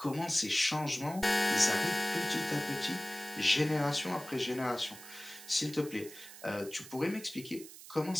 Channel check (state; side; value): noise; right; hiss, 16 dB below the sound